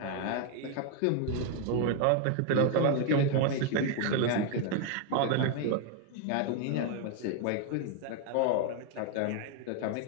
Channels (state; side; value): different; both; correlation 0.01